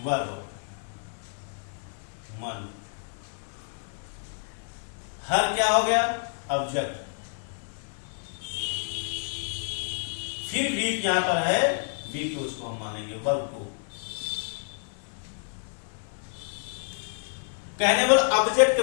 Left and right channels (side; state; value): right; silent; 59 dB below the other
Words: वर्ब मन, हर क्या हो गया ऑब्जेक्ट, फिर वीक यहां पर है वीक, तो उसको हम मानेंगे वर्ब को। कहने वाला ऑब्जेक्ट के